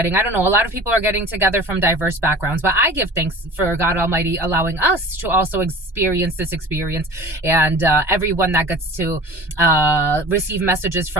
I don't know, a lot of people are getting together from diverse backgrounds. But I give thanks for God Almighty allowing us to also experience this experience, and everyone that gets to receive messages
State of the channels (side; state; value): left; late; 1.2 ms